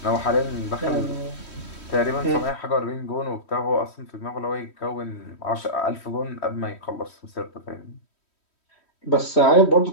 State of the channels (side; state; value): right; late; 3.1 ms